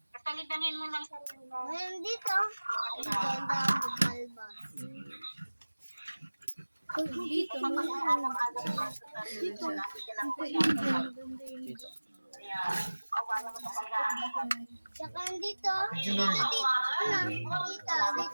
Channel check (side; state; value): both; inverted; correlation -1.00